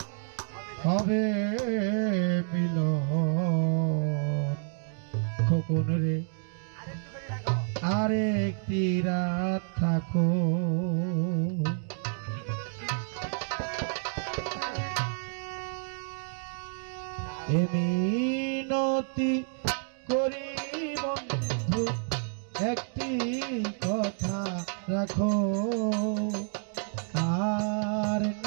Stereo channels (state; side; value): silent; left; 58 dB below the other